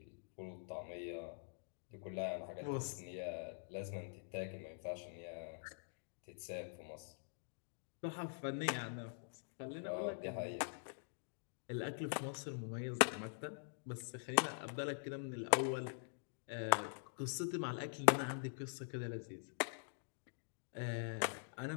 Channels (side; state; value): right; silent; digital silence